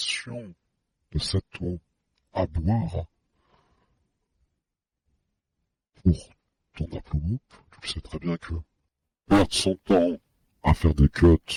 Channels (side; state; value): both; identical; correlation 1.00